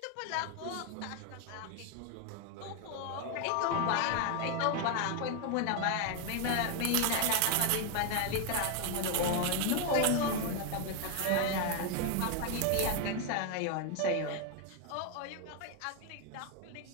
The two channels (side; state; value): both; different; correlation 0.01